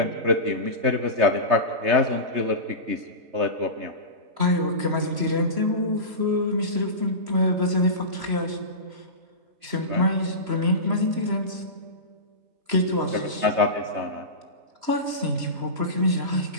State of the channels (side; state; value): left; late; 3.0 ms